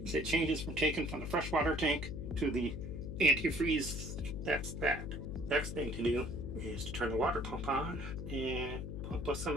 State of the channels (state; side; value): noise; left; hum, 6 dB below the sound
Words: is it changes from taking from the freshwater tank to the antifreeze. That's that. Next thing to do is to turn the water pump on and pump us some